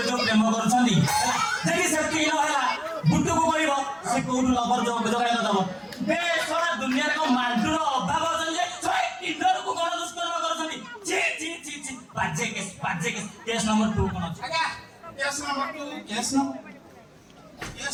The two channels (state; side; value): identical; both; correlation 1.00